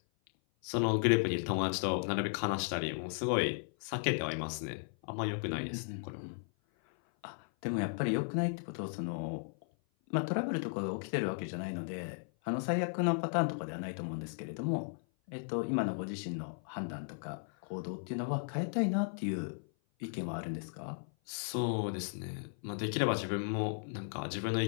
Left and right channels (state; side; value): silent; right; 54 dB below the other